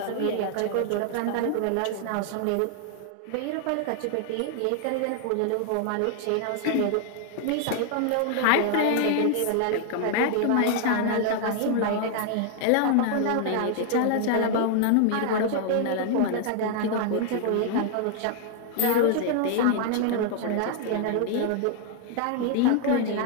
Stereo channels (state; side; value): different; both; correlation 0.00